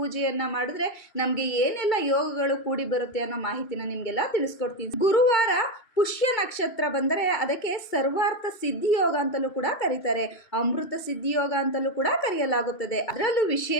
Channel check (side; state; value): right; late; 2.3 ms